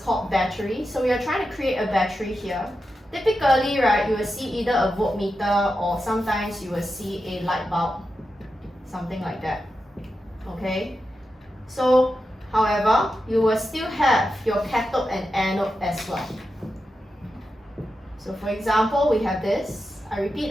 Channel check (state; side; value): normal; both; correlation 0.89